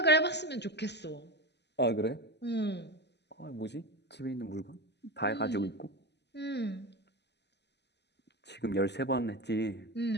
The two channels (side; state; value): right; late; 0.50 ms